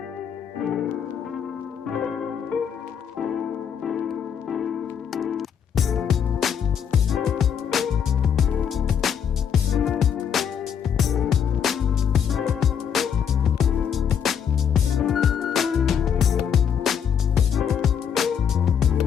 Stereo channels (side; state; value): right; quieter; 7.9 dB